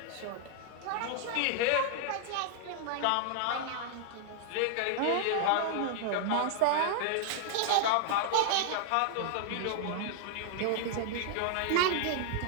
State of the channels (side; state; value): both; different; correlation -0.01